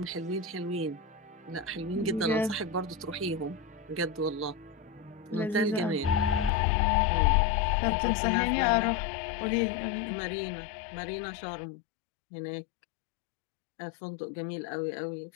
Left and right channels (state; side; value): drops out; right; at 6.5 s